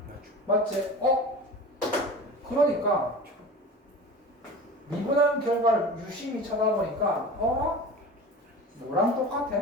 맞지? 그러니까 미분한 결과를 유심히 쳐다보니까 너랑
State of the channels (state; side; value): normal; both; correlation 0.35